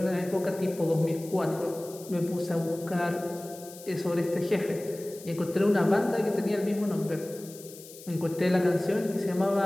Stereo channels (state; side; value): noise; left; hiss, 18 dB below the sound